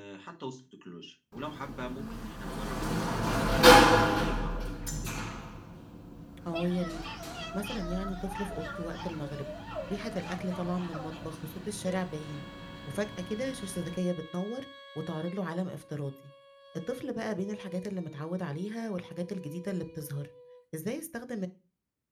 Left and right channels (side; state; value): both; identical; correlation 1.00